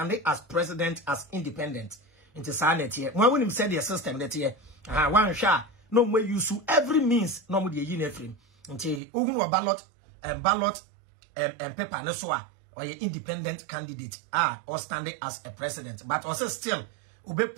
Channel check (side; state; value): left; drops out; at 9.0 s